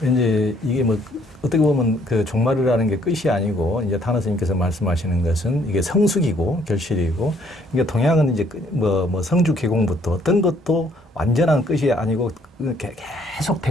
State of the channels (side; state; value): both; normal; correlation 0.64